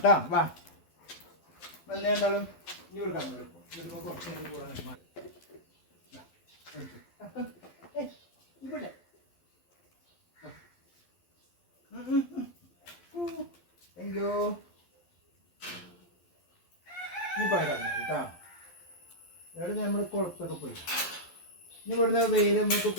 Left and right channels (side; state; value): right; late; 12 ms